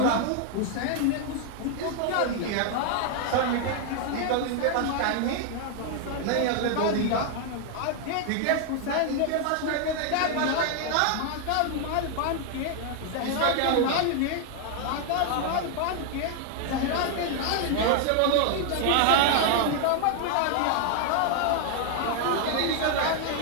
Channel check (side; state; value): both; different; correlation 0.00